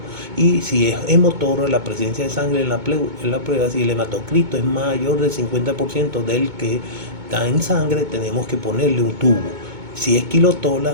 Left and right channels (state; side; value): late; left; 2.2 ms